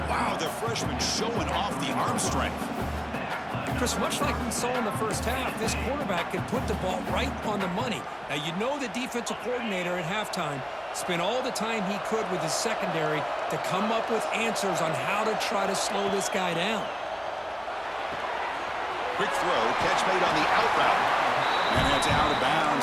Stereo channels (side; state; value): both; identical; correlation 1.00